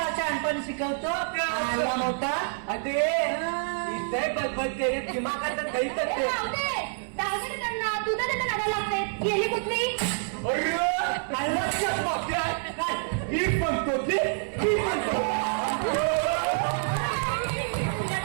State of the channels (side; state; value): left; silent; 60 dB below the other